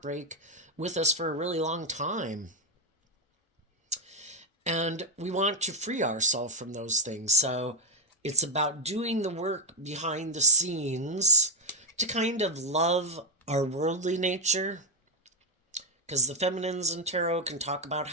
with us for a really long time. And we want to free ourselves from those things. So it's about doing the work behind the scenes to kind of love our worldly nature, because the feminines in tarot can talk about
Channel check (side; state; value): both; normal; correlation 0.01